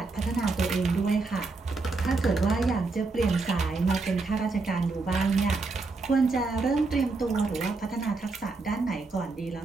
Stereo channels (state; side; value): quieter; left; 3.8 dB